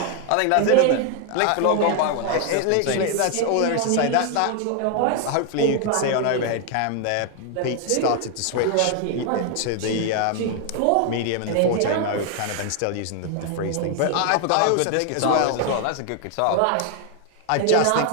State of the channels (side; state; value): both; different; correlation 0.00